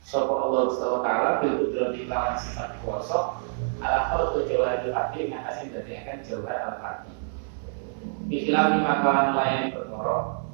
sopo Allah SWT bil kudrati lawan sifat kuasa ala khulqu jawhar al-hati ngatasin dadiakan jawhar al-hati bikhilaf lima kawan melayani perkara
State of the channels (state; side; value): silent; left; 60 dB below the other